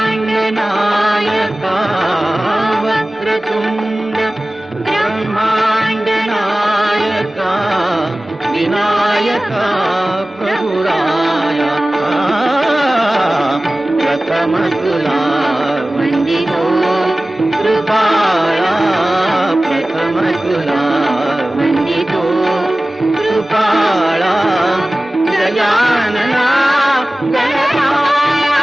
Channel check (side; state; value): both; normal; correlation 0.97